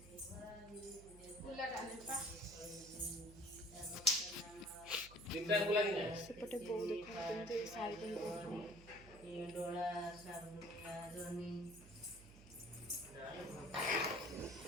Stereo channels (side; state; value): right; noise; hum, 18 dB below the sound